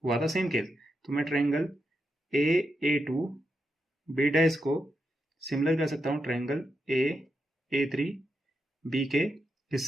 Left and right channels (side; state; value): both; normal; correlation 0.85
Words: हुआ था सेम केस। तो मैं ट्रायंगल A2 B डैश को सिमिलर कर सकता हूं ट्रायंगल A3 B के